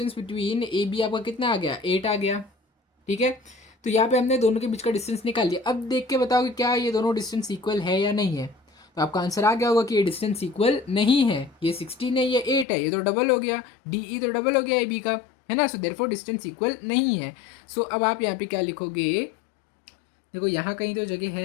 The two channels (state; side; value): drops out; right; at 12.7 s